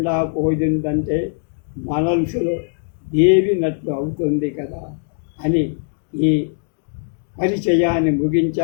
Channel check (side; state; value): right; silent; 66 dB below the other